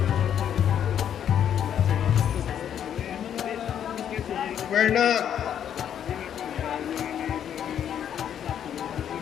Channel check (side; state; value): right; quieter; 9.4 dB